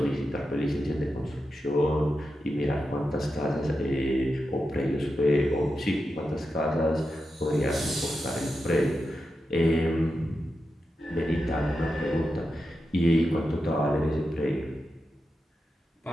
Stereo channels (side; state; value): both; normal; correlation 0.89